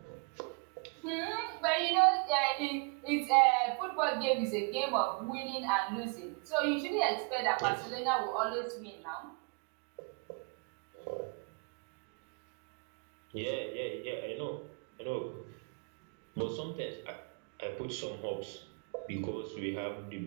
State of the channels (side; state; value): left; quieter; 35.6 dB